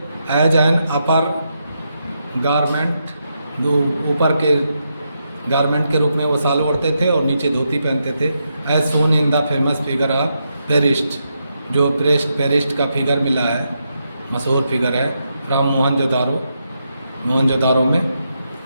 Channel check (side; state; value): both; inverted; correlation -0.83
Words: एज एन अपर गारमेंट, जो ऊपर के गारमेंट के रूप में वो साल ओढ़ते थे और नीचे धोती पहनते थे। As shown in the famous figure of priest, जो पेरिस्ट का फिगर मिला है, मशहूर फिगर है, फ्रॉम मोहनजोदारो में।